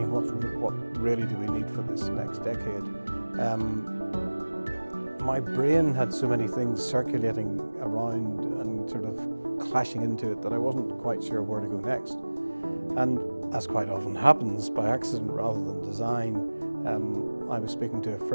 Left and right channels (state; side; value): inverted; both; correlation -1.00